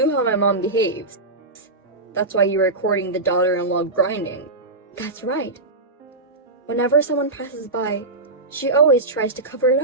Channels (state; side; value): quieter; left; 3.0 dB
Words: how my mom behaves. That's why you were recording the daughter-in-law grinding. That's right. Whenever someone passes by, she always tries to cover it